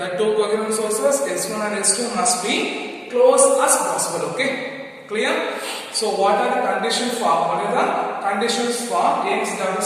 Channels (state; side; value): identical; both; correlation 1.00